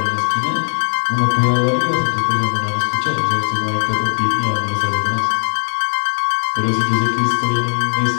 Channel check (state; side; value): silent; right; digital silence